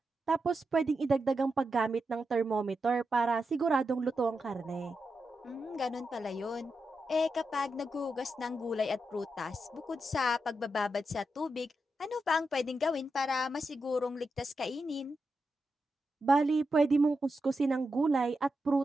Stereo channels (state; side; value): normal; both; correlation 0.87